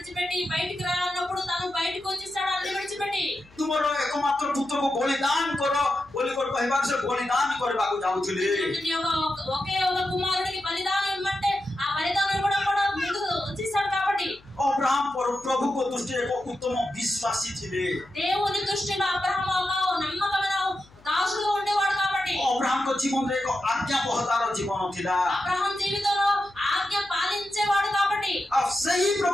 బయటికి రా అన్నప్పుడు తాను బయటికి వచ్చేసాడు అన్ని విడిచిపెట్టి तुम्हारो एकमात्र पुत्र को बलिदान करो बोली को कहबा से बलिदान करबा को जाउथिले ఒకే ఒక కుమారుడికి బలిదానం ఇవ్వమంటే ఆ బలిదానం కూడా ముందుకు వచ్చేసాడు కాబట్టి अब्राहम प्रभु को दृष्टिरे एक उत्तम विश्वासी थिले దేవుని దృష్టిలో అబ్రహాము ఒక నమ్మకమైన దాసుడుగా ఉండేవాడు కాబట్టి अब्राहम को जीवन रे एक आज्ञा बहतार जीवन थिला అబ్రహాం జీవితంలో ఆజ్ఞ పాలించేవాడు కాబట్టి अब सही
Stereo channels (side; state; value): left; noise; hum, 27 dB below the sound